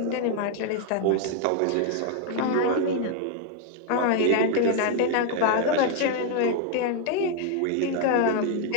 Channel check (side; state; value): both; different; correlation 0.00